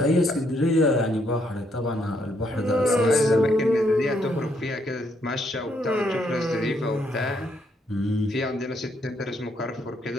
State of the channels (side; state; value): both; normal; correlation 0.73